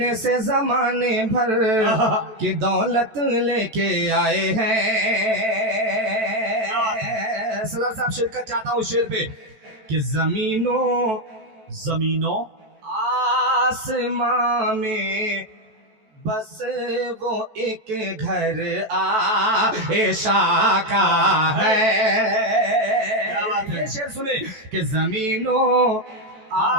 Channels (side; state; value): left; late; 14 ms